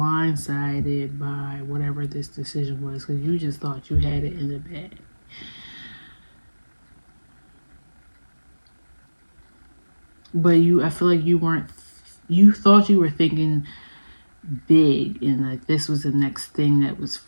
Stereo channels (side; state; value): both; inverted; correlation -1.00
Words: by whatever this decision was, because you just thought you had it in the bag. But I feel like you thought you were thinking big, and like this was the next thing that was